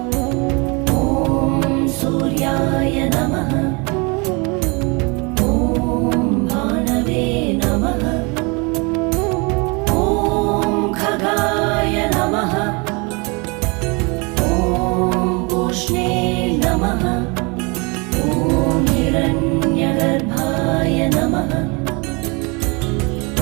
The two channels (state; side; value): quieter; left; 29.6 dB